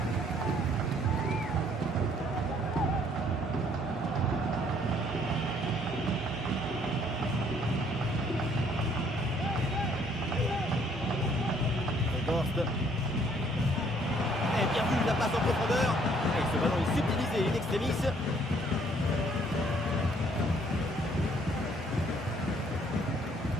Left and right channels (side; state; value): both; normal; correlation 0.63